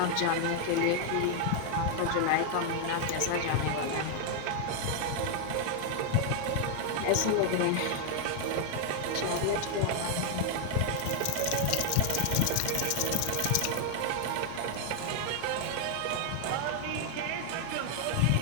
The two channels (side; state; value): both; different; correlation 0.00